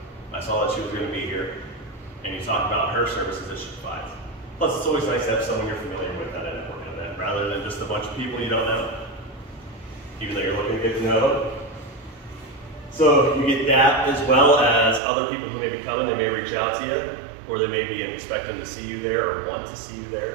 I saw that she was going to be here. And you talk about her services that she provides. Plus, it's always nice to have someone you're familiar with at a networking event, rather than just a bunch of people you don't know, even though you're looking to get to know them. So you get that, as well as other people who may be coming. They may reach out to you, or they may be expecting to see you there or want to see you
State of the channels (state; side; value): drops out; left; at 15.0 s